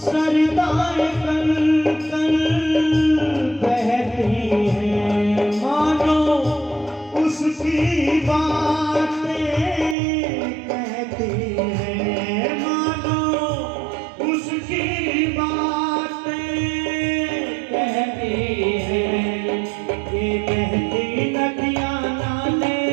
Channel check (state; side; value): drops out; left; at 10.0 s